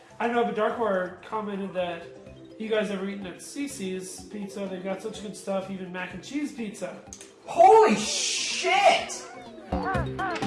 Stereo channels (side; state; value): both; identical; correlation 1.00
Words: I don't know, but Darkwire commented that you guys ever eaten at Cece's Pizza? They've got such good stuff, even mac and cheese pizza. Holy shit!